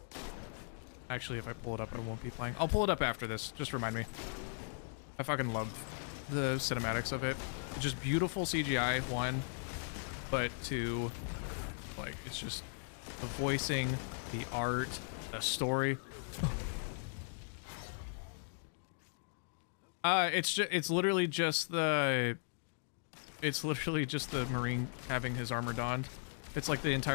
Actually, if I pull it up, I won't be playing. I'll pull it up after this. Just remind me. I fucking love the cinematics of it. Just beautiful CGI, one, but two, like, it's just the voicing, the art, the story. It's literally just the Marine having his armor donned. It's like the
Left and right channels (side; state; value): right; silent; digital silence